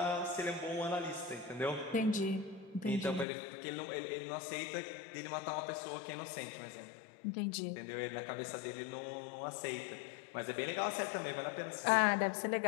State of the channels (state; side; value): drops out; right; at 3.2 s